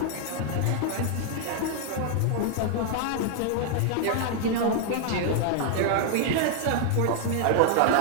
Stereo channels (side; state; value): both; different; correlation 0.00